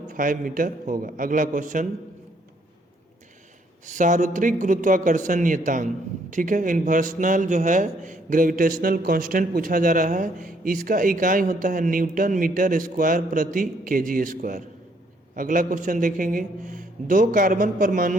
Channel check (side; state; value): both; normal; correlation 0.68